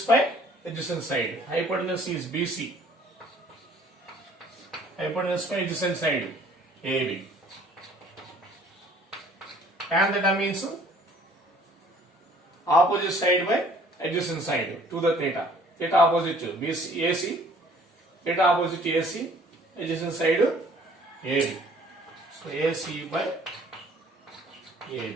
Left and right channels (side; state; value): both; normal; correlation 0.56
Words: by adjacent side. Hypotenuse is BC. Hypotenuse by adjacent side AB. Tan theta means opposite side by adjacent side to the theta. it opposite to BC, AC, it opposite to AC, adjacent side AB. So AC by